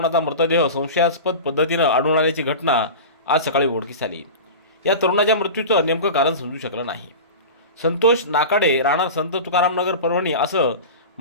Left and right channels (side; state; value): both; inverted; correlation -0.30